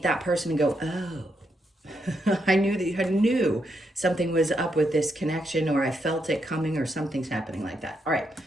that person and go, oh, I knew something was up with this connection, or I felt it coming, or something's happening like that. All right,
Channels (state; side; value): normal; both; correlation 0.80